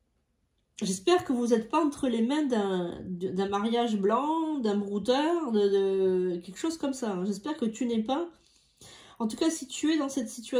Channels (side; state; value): both; identical; correlation 1.00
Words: J'espère que vous n'êtes pas entre les mains d'un mariage blanc, d'un brouteur, de quelque chose comme ça. J'espère que tu n'es pas... En tout cas, si tu es dans cette